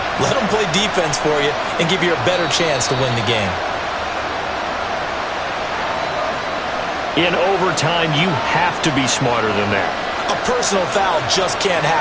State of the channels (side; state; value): both; identical; correlation 1.00